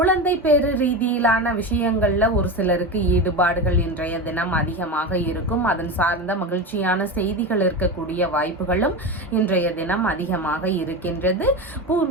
பேரு ரீதியிலான விஷயங்கள்ல ஒரு சிலருக்கு ஈடுபாடுகள் இன்றைய தினம் அதிகமாக இருக்கும். அதன் சார்ந்த மகிழ்ச்சியான செய்திகள் இருக்கக்கூடிய வாய்ப்புகளும் இன்றைய தினம் அதிகமாக இருக்கின்றது.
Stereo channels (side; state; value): both; normal; correlation 0.22